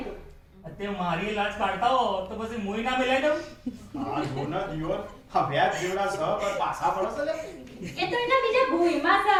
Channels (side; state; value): both; identical; correlation 1.00